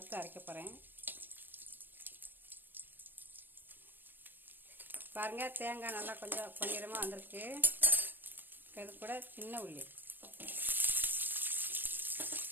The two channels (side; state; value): left; late; 0.093 ms